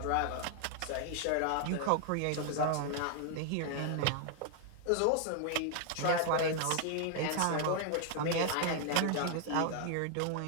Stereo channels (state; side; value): different; both; correlation 0.00